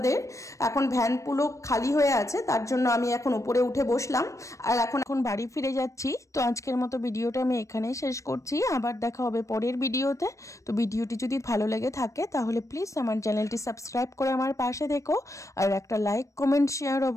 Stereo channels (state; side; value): late; right; 0.15 ms